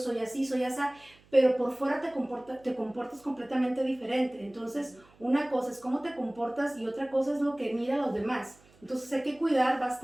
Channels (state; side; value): noise; right; hum, 29 dB below the sound